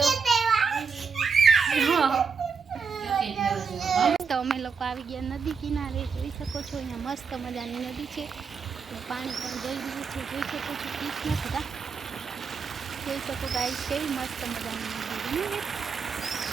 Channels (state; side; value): quieter; left; 5.5 dB